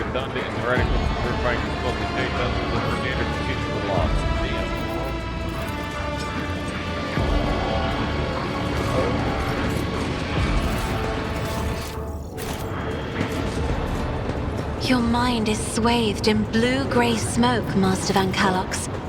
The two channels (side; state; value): both; identical; correlation 1.00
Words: and heretical to purifying the smoke and take dozens of the standard procedure were lost. Damn. Your mind is swathed in blue-gray smoke, Master Van Calox.